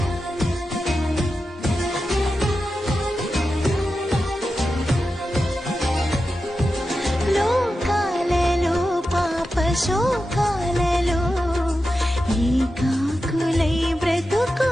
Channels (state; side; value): normal; both; correlation 0.91